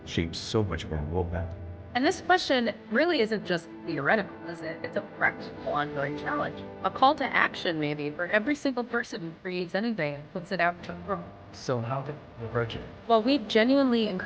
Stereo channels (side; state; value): both; identical; correlation 1.00